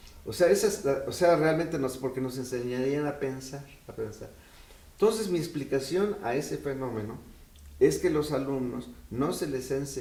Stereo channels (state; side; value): identical; both; correlation 1.00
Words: Realmente porque nos enseñarían a pensar. Entonces mi explicación a ese fenómeno es que los alumnos no se les ha